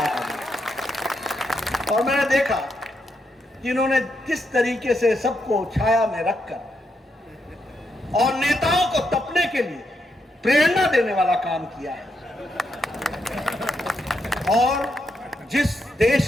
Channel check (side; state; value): both; normal; correlation 0.81